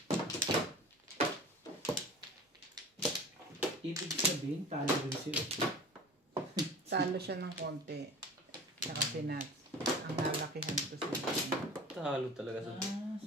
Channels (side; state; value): both; normal; correlation 0.40